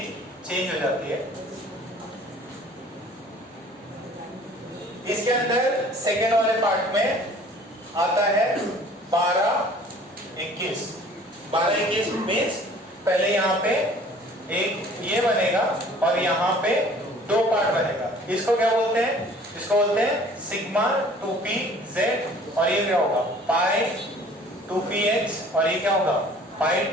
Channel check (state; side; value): normal; both; correlation 0.51